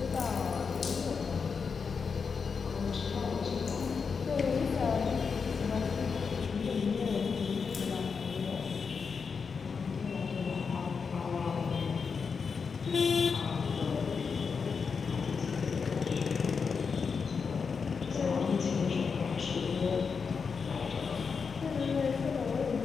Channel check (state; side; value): quieter; right; 5.6 dB